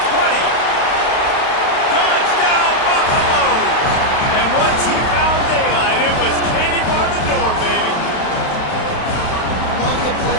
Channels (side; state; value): right; late; 32 ms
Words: 20. Touchdown, Buffaloes. And once he found daylight, it was Katie bar the door, baby. Love the play